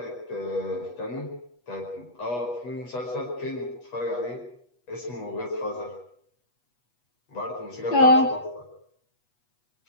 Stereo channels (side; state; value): right; late; 8.2 ms